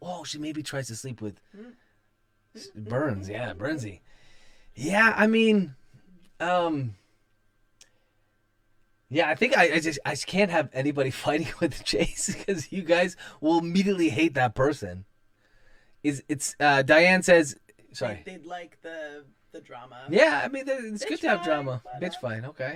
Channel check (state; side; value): identical; both; correlation 1.00